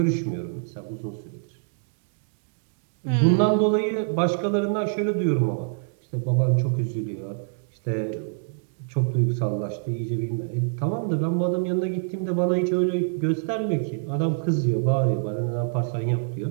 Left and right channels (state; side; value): silent; left; digital silence